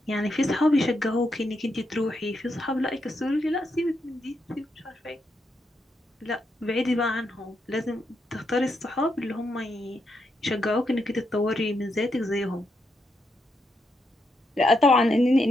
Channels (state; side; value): normal; both; correlation 0.81